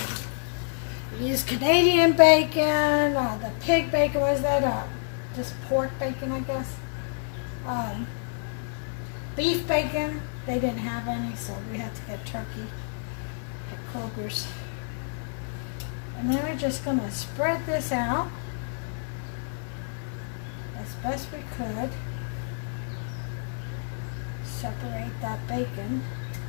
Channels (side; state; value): right; silent; digital silence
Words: You use Canadian bacon, or the pig bacon, what is that? Just pork bacon, I guess. Beef bacon, they didn't have any, so we had to get turkey at Kroger's. And then we're just going to spread this out as best we could. Separate that bacon,